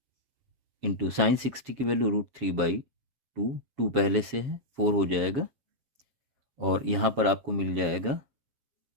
इंटू साइन 60 की वैल्यू √3/2, 2 पहले से है 4 हो जाएगा, और यहाँ पर आपको मिल जाएगा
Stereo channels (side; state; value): left; late; 7.3 ms